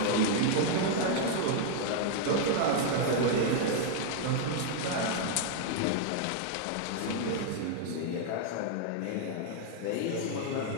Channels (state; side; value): different; both; correlation -0.01